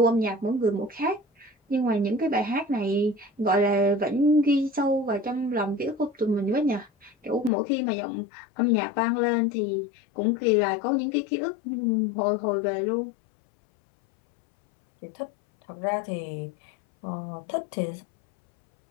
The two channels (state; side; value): drops out; right; at 7.5 s